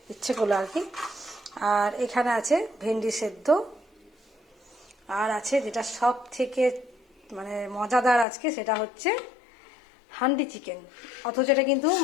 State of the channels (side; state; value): right; drops out; at 8.2 s